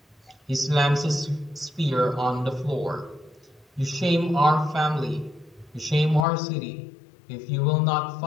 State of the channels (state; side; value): drops out; right; at 6.2 s